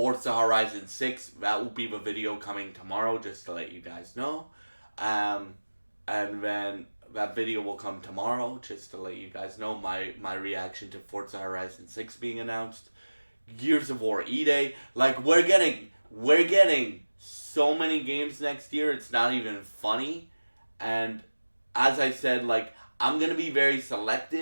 Horizon 6. That will be the video coming tomorrow, just to let you guys know. And then that video will come tomorrow, just to let you guys know my reaction to Forza Horizon 6 being announced. Gears of War E-Day. Like, we're getting so many games next year, it's not even funny. And as I said, like, I'm gonna be very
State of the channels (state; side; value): inverted; both; correlation -1.00